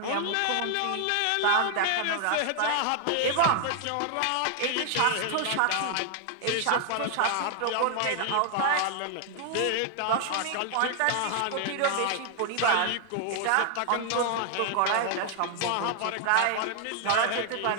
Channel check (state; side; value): different; both; correlation 0.00